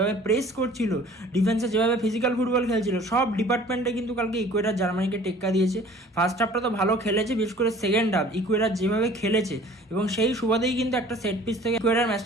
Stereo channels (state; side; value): normal; both; correlation 0.49